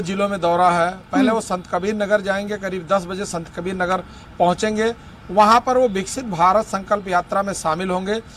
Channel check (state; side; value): identical; both; correlation 1.00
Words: जिलों में दौरा है। पहले वो संत कबीर नगर जाएंगे, करीब 10 बजे संत कबीर नगर पहुंचेंगे। वहां पर वो विकसित भारत संकल्प यात्रा में शामिल होंगे।